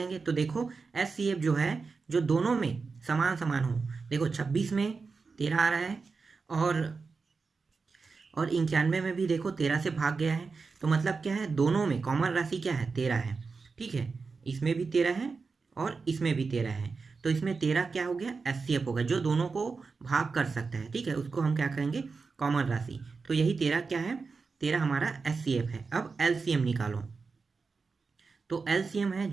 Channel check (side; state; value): left; quieter; 4.6 dB